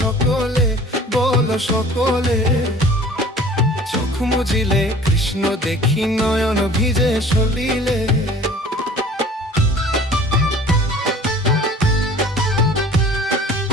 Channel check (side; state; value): both; normal; correlation 0.47